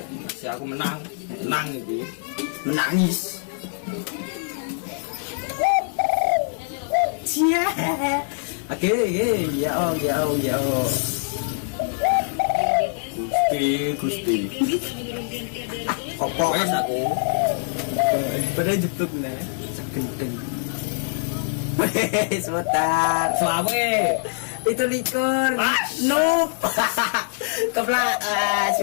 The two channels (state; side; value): silent; right; 63 dB below the other